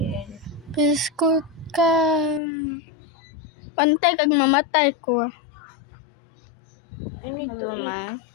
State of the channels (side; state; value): right; drops out; at 2.4 s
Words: Biskot ka. Pantay kag mamatay ko. I need to eat.